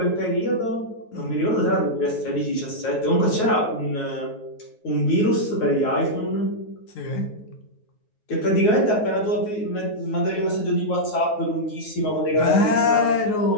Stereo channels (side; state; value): right; late; 9.4 ms